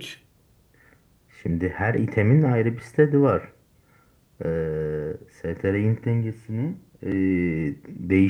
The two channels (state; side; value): identical; both; correlation 1.00